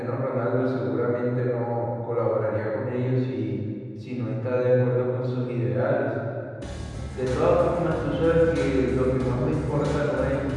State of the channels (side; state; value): both; identical; correlation 1.00